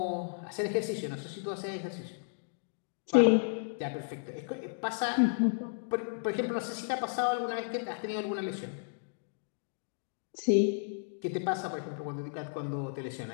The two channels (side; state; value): right; silent; digital silence